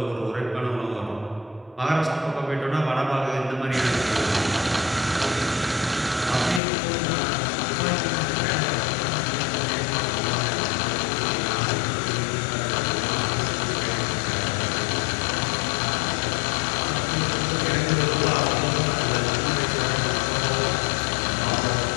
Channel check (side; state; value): right; drops out; at 6.6 s